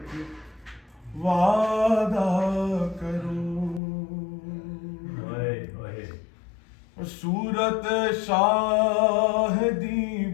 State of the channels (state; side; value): drops out; right; at 3.8 s